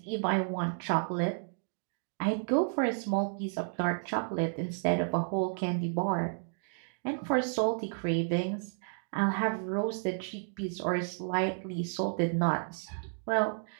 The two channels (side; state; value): left; silent; digital silence